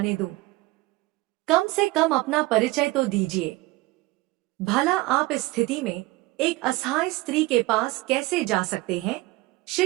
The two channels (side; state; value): left; quieter; 20.5 dB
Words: दूं? कम से कम अपना परिचय तो दीजिए। भला आप इस स्थिति में एक असहाय स्त्री के पास कैसे जा सकते हैं?